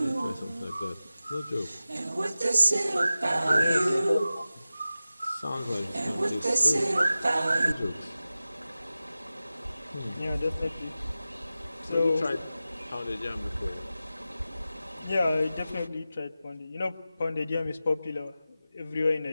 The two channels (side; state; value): both; inverted; correlation -0.95